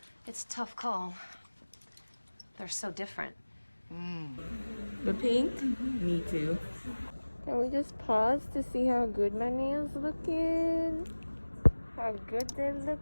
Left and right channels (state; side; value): inverted; both; correlation -1.00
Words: It's a tough call. They're so different. The pink? Me too. Can we just pause to see how good my nails looking? How good they're